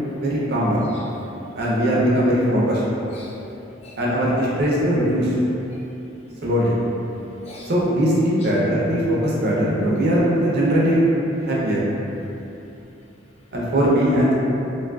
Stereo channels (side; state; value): both; normal; correlation 0.57